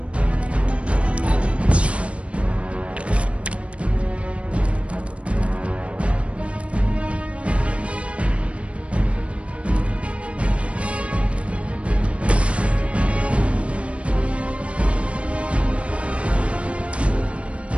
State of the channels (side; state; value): left; late; 0.061 ms